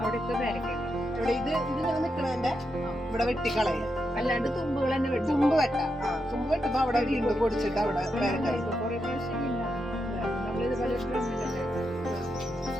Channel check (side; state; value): both; normal; correlation 0.84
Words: അവിടെ ഇത് ഇങ്ങനെ നിക്കണതിന്റെ ഇവിടെ വെട്ടിക്കളയ, അല്ലാണ്ട് തുമ്പുകൾ തന്നെ തുമ്പ് വെട്ടാം. തുമ്പ് വെട്ടുമ്പോ അവിടെ വീണ്ടും പൊടിച്ചിട്ട് അവിടെ പേരക്കായ. കുറെ പ്രാവശ്യം നമ്മളിത് പല